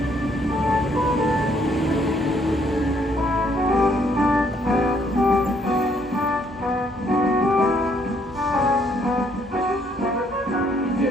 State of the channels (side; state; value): both; normal; correlation 0.68